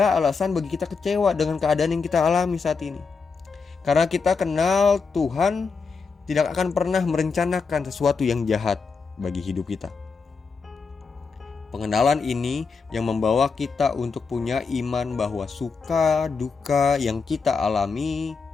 alasan bagi kita kecewa dengan keadaan yang kita alami saat ini. Karena kita kenal Tuhan tidak akan pernah merencanakan sesuatu yang jahat bagi hidup kita. Pengenalan ini yang membawa kita untuk punya iman bahwa suka duka yang kita alami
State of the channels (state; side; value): quieter; right; 5.0 dB